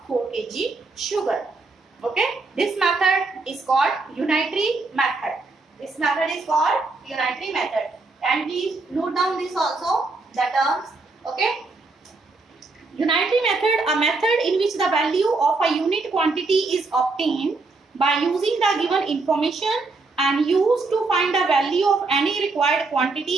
4 kg sugar. Okay, this method is called unitary method. This method is called unitary method. And please note down this also, the terms. Okay, unitary method, a method in which the value of a unit quantity is obtained by using the given information and used to find the value of any required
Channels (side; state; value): left; quieter; 3.7 dB